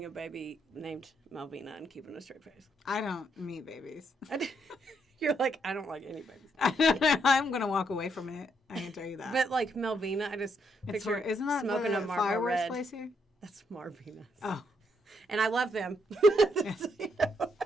a baby named Malvina and keeping a straight face? I don't meet babies. You're like, I don't like any babies. I'm going to walk away from it. I can tell you that. But like Malvina, I just picture isn't that smoking the a Marlboro fireworks Red. place here? That's Marvina's. Oh. And I love them.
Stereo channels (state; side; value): normal; both; correlation 0.75